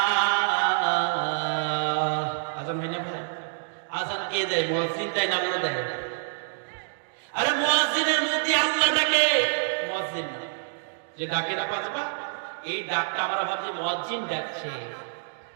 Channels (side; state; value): left; silent; digital silence